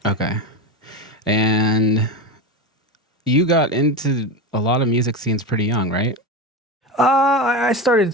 Okay. And you got into a lot of music scenes pretty young, right? I started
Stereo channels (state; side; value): normal; both; correlation 0.21